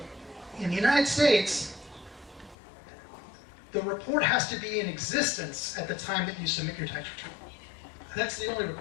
In the United States, the report has to be in existence at the time that you submit your tax return. That's the only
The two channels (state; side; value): drops out; right; at 2.6 s